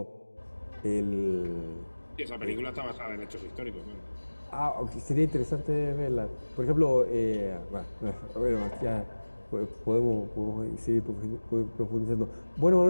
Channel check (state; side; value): inverted; both; correlation -1.00